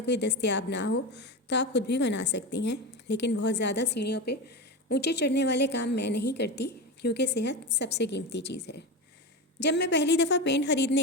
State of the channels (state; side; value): normal; both; correlation 0.21